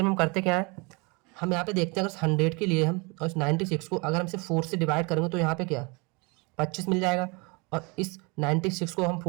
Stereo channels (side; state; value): left; quieter; 29.2 dB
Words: में हम करते क्या है, हम यहाँ पे देखते हैं अगर 100 के लिए हम और इस 96 को अगर हम इसे 4 से डिवाइड करेंगे तो यहाँ पे क्या 25 मिल जाएगा, और इस 96 को हम